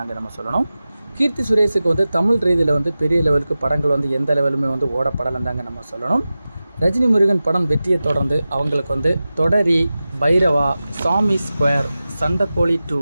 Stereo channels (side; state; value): both; inverted; correlation -0.95